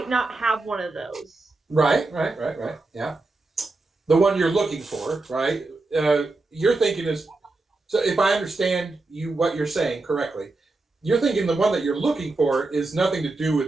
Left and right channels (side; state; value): left; quieter; 3.3 dB